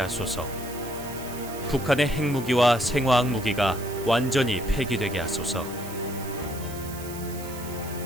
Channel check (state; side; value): noise; right; hiss, 14 dB below the sound